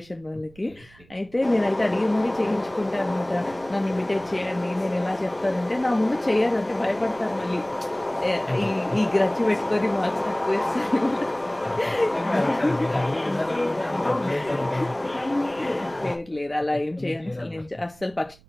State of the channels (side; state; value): right; noise; rumble, 26 dB below the sound